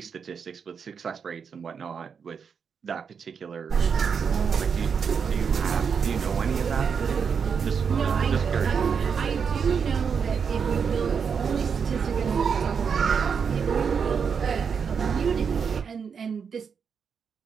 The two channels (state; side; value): quieter; left; 6.4 dB